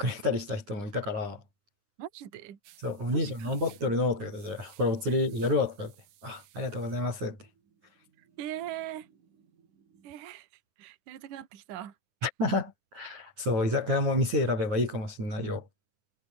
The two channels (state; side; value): late; left; 9.8 ms